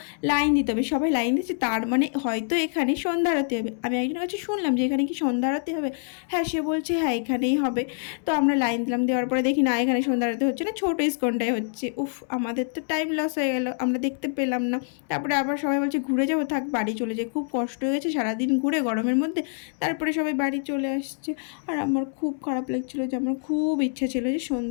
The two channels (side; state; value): right; silent; 60 dB below the other